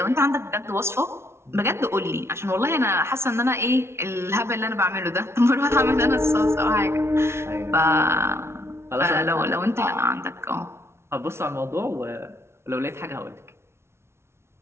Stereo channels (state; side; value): late; left; 0.12 ms